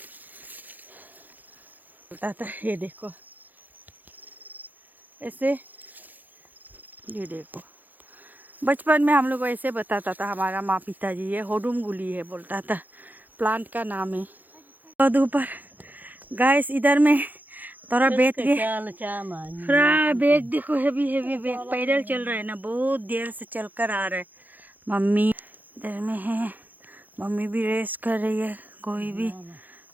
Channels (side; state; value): left; late; 0.084 ms